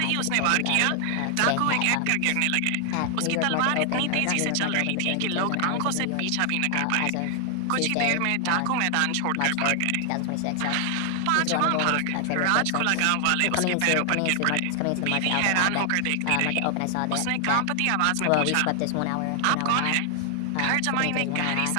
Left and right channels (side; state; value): both; different; correlation 0.00